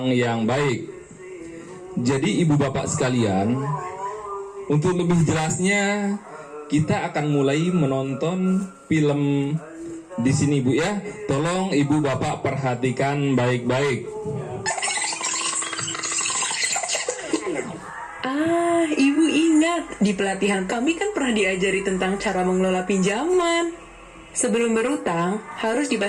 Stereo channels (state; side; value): identical; both; correlation 1.00